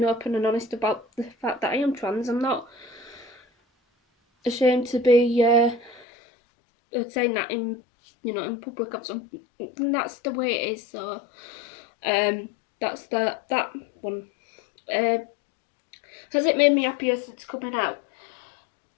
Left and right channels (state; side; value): drops out; right; at 6.1 s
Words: open and honest about the fact that I am trans. I'm not ashamed to be saying that in public or something. That's the way it is. So that's that one. Has it made me happier since coming out?